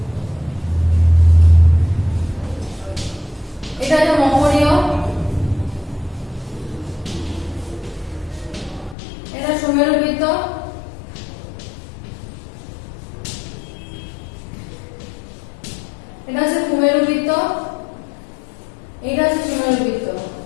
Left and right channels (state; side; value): drops out; right; at 9.0 s